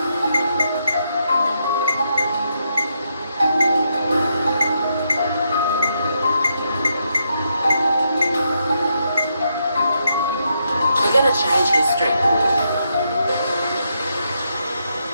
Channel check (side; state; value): both; inverted; correlation -0.80